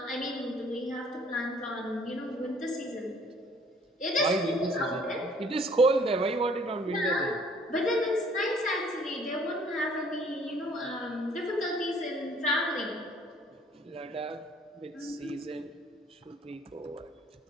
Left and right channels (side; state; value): both; normal; correlation 0.58